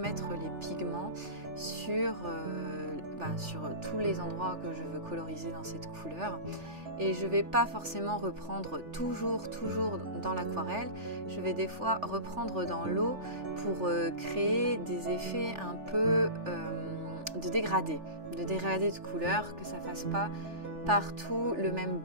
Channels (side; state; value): left; late; 3.4 ms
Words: les pigments sur tous les endroits que je veux coloriser dans cette couleur. Et je ne vais pas forcément reprendre toujours dans l'aquarelle. Je vais des fois reprendre dans l'eau pour créer des effets un peu de dégradé de couleur, que ça ne fasse pas partout le même